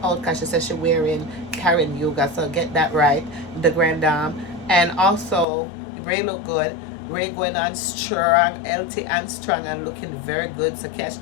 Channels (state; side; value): drops out; right; at 5.5 s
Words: out, cause she says she wearing Karen Huger, so get that right, the grand dame. And also Ray look good. Ray going on strong, healthy and strong, and looking very good, so catch